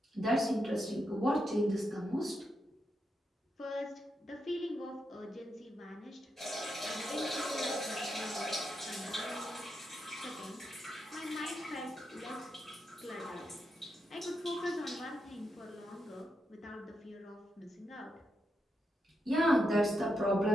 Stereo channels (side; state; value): both; normal; correlation 0.84